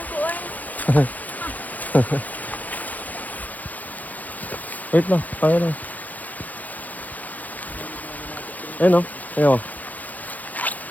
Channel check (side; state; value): right; late; 0.080 ms